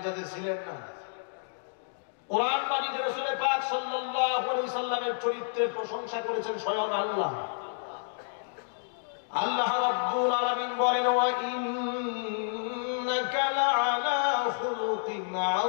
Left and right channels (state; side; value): silent; right; digital silence